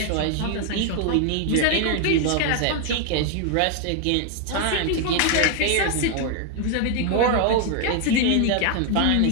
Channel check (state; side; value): different; both; correlation 0.00